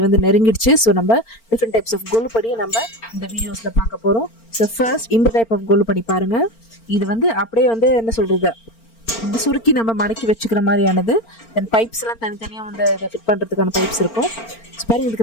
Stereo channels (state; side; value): late; right; 4.4 ms